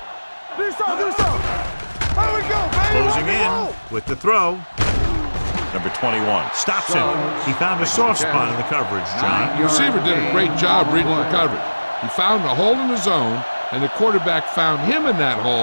Do something. There we go, baby. Closing in with the throw. Number 21 stops him. He found a soft spot in the coverage, John. The receiver did a great job reading the coverage. He found a hole in the zone, and the quarterback found him in that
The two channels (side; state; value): both; inverted; correlation -1.00